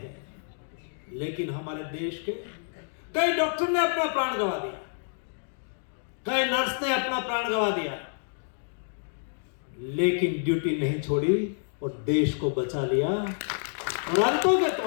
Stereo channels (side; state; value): right; silent; digital silence